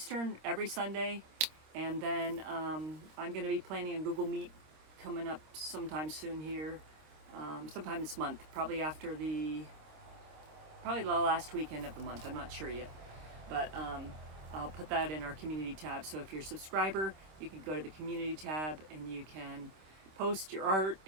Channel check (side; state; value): left; late; 26 ms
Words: every Sunday. And then I'm going to be planning on Google Meet coming up sometime soon here. Sometime this month, probably the last weekend of the month. I'm not sure yet, but I'll put that in our community tab. So if you're a subscriber, you can go to the community tab and you can post your art